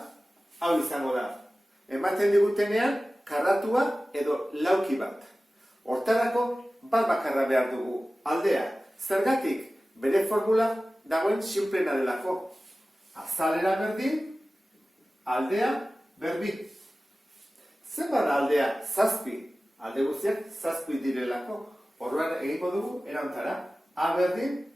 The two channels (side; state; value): both; normal; correlation 0.96